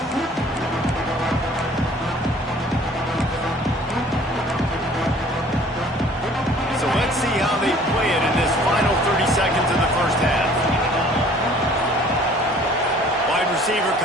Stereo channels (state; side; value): normal; both; correlation 0.53